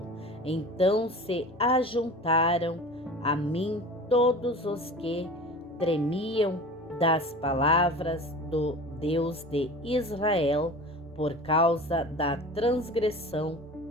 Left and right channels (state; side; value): normal; both; correlation 0.37